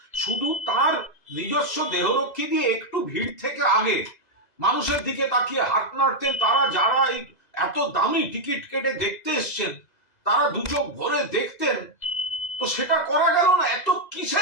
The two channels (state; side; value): late; right; 2.0 ms